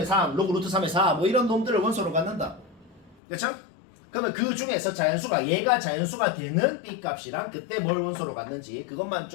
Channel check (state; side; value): drops out; right; at 3.2 s